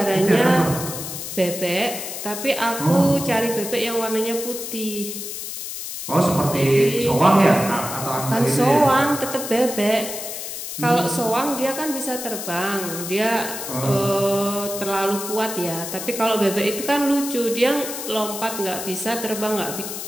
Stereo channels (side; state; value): left; noise; hiss, 7 dB below the sound